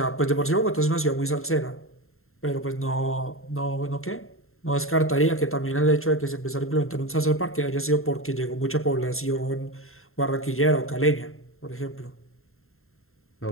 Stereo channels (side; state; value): right; late; 0.61 ms